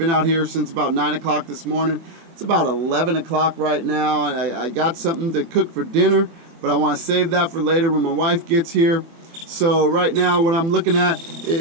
out here since about 9 o'clock this morning. It's about 11 o'clock right now. I got something to cook for dinner, but I want to save that for later when my wife gets here. So right now what I'm looking at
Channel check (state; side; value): late; left; 24 ms